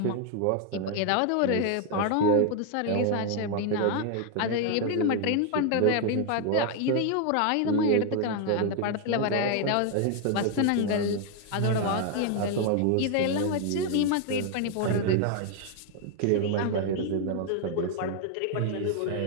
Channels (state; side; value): different; both; correlation 0.00